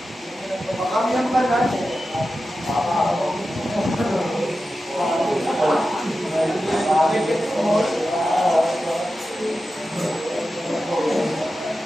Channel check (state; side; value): normal; both; correlation 0.92